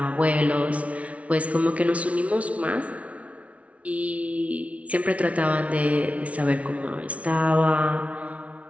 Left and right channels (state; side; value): late; left; 0.065 ms